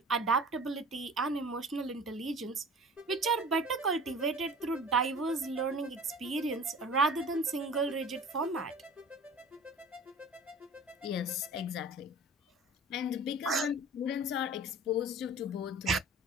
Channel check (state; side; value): normal; both; correlation 0.42